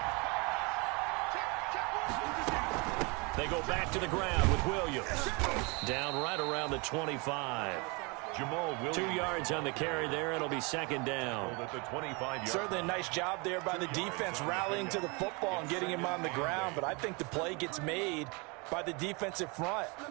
They go back to the ground with Williams. Down right around the 25. Jamal Williams. 2 yards on the carry there. It'll be second down. At the 25-yard. Certainly a nice job there by the defense rallying to the football and getting him on the ground. But I think the play gets made by the defensive front,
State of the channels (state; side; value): quieter; left; 29.6 dB